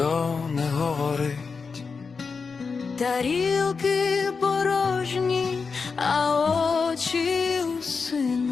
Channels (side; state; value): right; quieter; 5.0 dB